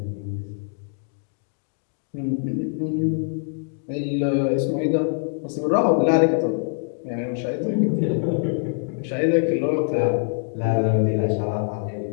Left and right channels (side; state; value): right; silent; 63 dB below the other